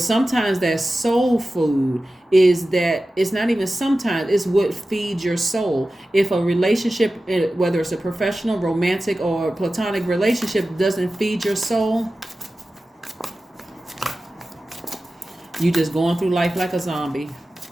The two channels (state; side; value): normal; both; correlation 0.95